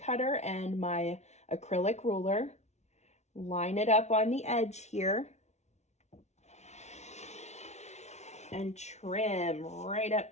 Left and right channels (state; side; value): late; right; 0.32 ms